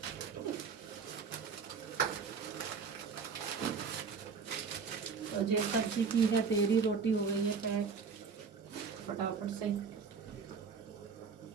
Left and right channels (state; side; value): quieter; left; 5.6 dB